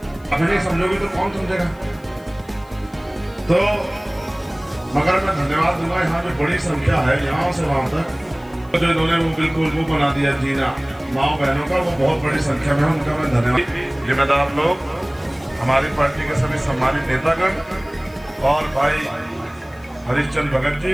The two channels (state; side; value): noise; left; hiss, 29 dB below the sound